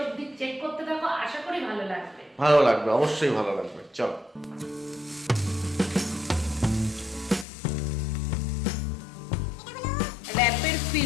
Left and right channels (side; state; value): right; drops out; at 7.5 s